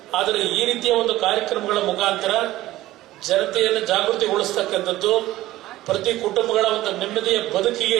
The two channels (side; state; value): left; quieter; 16.0 dB